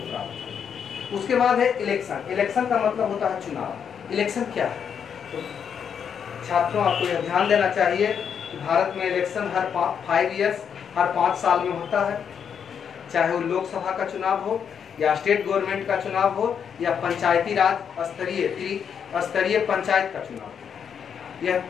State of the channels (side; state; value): right; quieter; 7.5 dB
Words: प्राप्त है। उसके बाद है इलेक्शन। इलेक्शन का मतलब होता है चुनाव। इलेक्शन क्या है? तो छात्रों, आपको यह ध्यान देना चाहिए कि भारत में इलेक्शन हर 5 ईयर्स, हर 5 साल में होता है, चाहे वो लोकसभा का चुनाव हो या स्टेट गवर्नमेंट का चुनाव हो या पंचायती राज स्तरीय पंचायत का चुनाव हो। यह